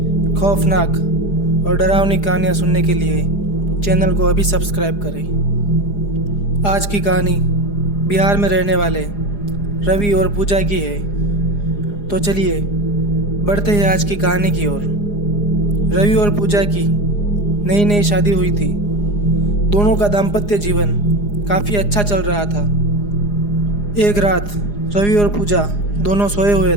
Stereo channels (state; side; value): late; right; 4.9 ms